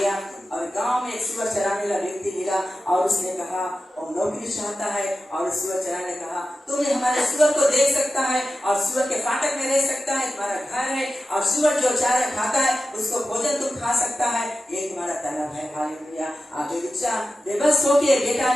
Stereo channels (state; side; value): normal; both; correlation 0.93